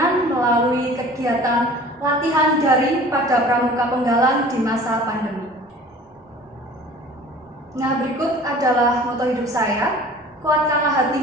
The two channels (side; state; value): both; normal; correlation 0.45